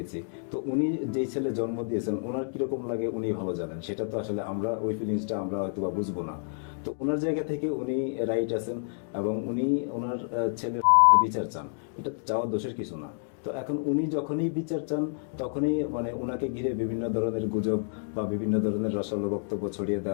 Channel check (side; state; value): right; silent; digital silence